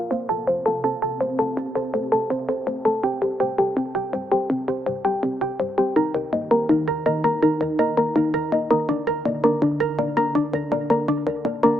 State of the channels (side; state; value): both; normal; correlation 0.82